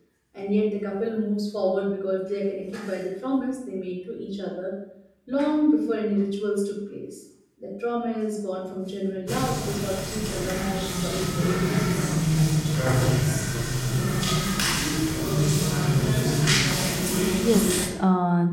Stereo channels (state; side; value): identical; both; correlation 1.00